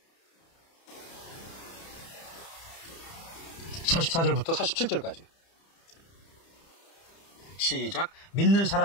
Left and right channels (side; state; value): right; late; 30 ms